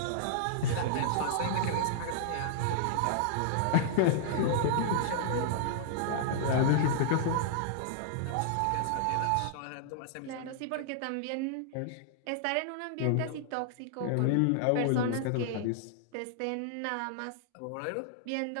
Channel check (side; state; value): both; different; correlation -0.01